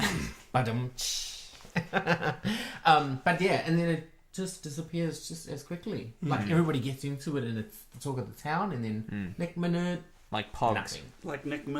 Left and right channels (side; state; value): both; identical; correlation 1.00